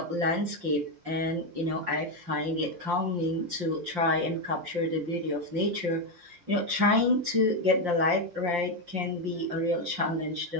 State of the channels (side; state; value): left; late; 5.7 ms